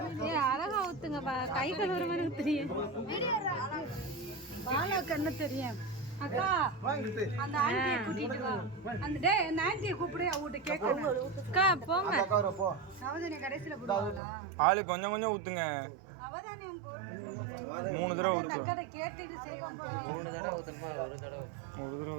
அழகா ஊத்துங்க. கை கழுவுற மாதிரி ஊத்துறீங்க. பாலாக்கு என்ன தெரியும்? அக்கா அந்த ஆண்டியை கூட்டிட்டு வா. அந்த அந்த ஆண்டியை கூப்பிடு. அவட்ட கேட்கணும். அக்கா போங்க. நவதானியம் கடைசில போடுவாங்களா? ஆளு கொஞ்சம் கொஞ்சம் ஊத்துங்க. நவதானியம் போட்டு 3 தடவை ஊத்து. அக்கா கேட்டிட்டு செய்வாங்க. 3 தடவை ஊத்தணுமா? ஒரு தடவை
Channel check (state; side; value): drops out; left; at 14.2 s